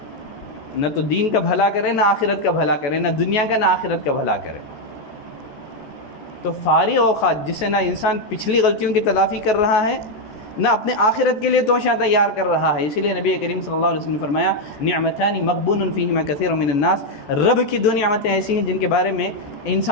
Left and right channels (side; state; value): right; late; 14 ms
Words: نہ تو دین کا بھلا کرے، نہ آخرت کا بھلا کرے، نہ دنیا کا نہ آخرت کا بھلا کرے۔ تو فارغ اوقات جس سے نہ انسان پچھلی غلطیوں کی تلافی کر رہا ہے، نہ اپنے آخرت کے لیے توشہ تیار کر رہا ہے۔ اسی لیے نبی کریم صلی اللہ علیہ وسلم نے فرمایا نعمتان مغبون فیہما کثیر من الناس، رب کی 2 نعمتیں ایسی ہیں جن کے بارے میں